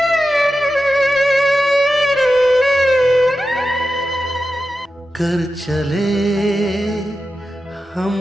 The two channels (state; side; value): normal; both; correlation 0.91